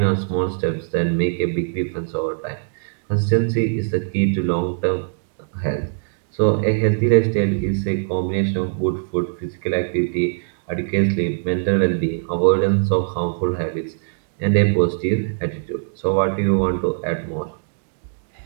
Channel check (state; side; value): silent; left; digital silence